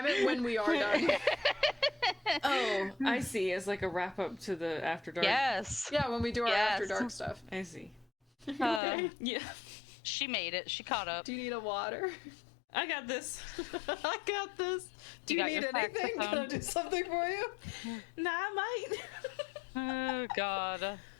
meant when we are done. Oh, I see. It's like a wrap-up to the After Dark. Yes. Yeah, when we do our Yes. after dark stuff. I see. Uh, Yeah. she made it. She caught up. Do you need a water? I got this. I got this. Do You you, got need your anything? Can I saxophone? do something for you? Nah, I might. Oh god.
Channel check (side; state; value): right; drops out; at 8.8 s